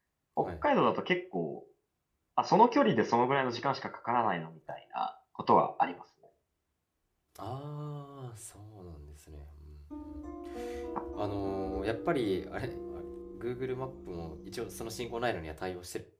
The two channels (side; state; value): both; identical; correlation 1.00